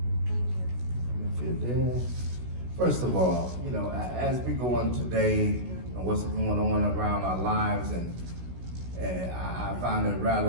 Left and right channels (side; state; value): left; late; 16 ms